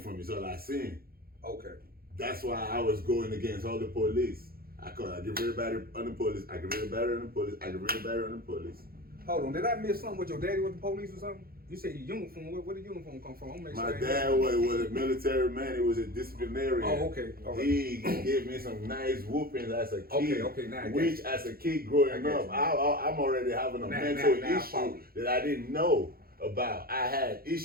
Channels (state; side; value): late; left; 0.44 ms